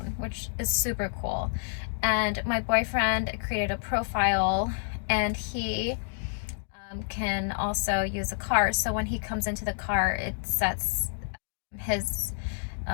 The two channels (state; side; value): silent; right; digital silence